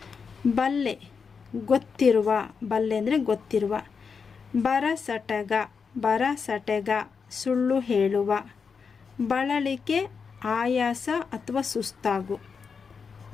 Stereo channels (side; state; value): right; quieter; 5.7 dB